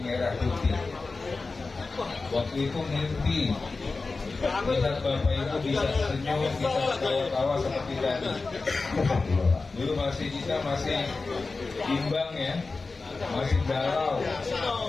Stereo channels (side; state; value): right; quieter; 3.9 dB